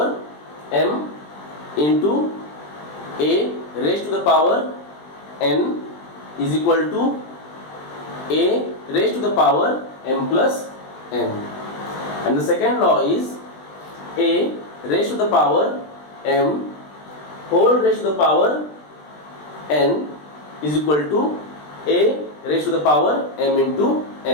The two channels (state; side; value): late; right; 20 ms